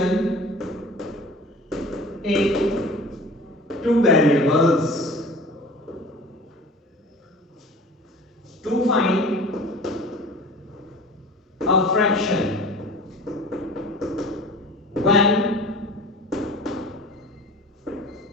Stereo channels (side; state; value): both; normal; correlation 0.41